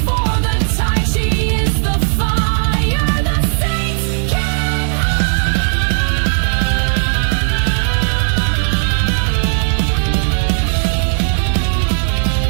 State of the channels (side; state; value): left; silent; 68 dB below the other